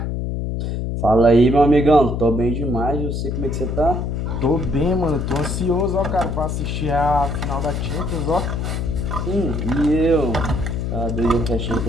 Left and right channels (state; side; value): noise; left; hum, 2 dB below the sound